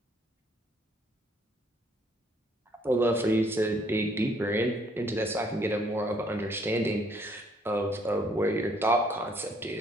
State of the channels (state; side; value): normal; both; correlation 0.65